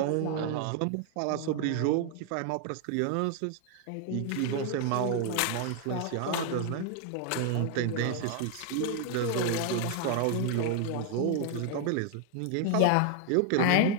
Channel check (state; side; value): different; both; correlation 0.00